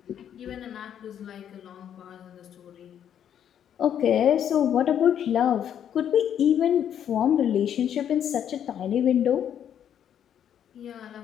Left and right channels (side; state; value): right; quieter; 9.4 dB